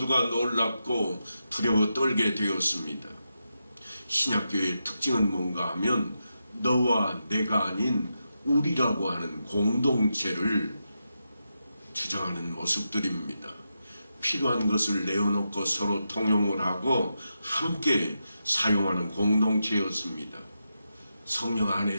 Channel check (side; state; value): both; inverted; correlation -0.87